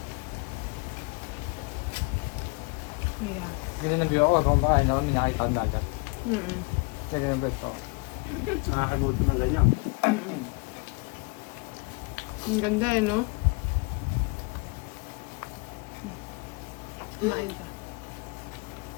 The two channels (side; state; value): right; quieter; 28.5 dB